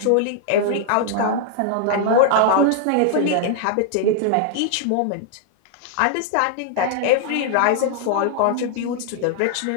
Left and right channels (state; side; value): different; both; correlation -0.01